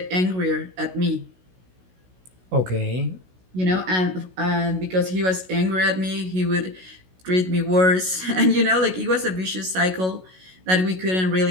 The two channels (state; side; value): late; left; 16 ms